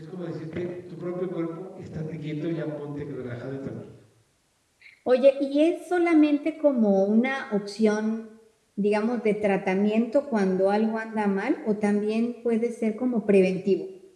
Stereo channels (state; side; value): identical; both; correlation 1.00